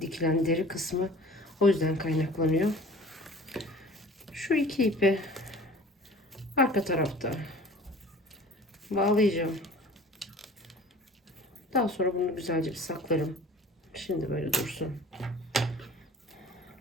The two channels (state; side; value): normal; both; correlation 0.45